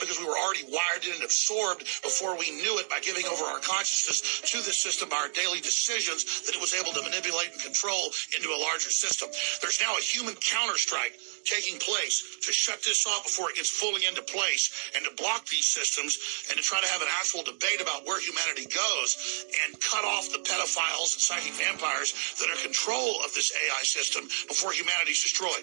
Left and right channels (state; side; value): silent; left; digital silence